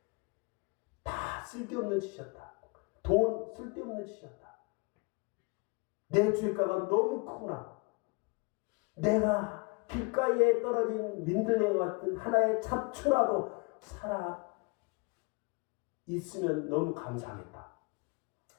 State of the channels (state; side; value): quieter; right; 30.4 dB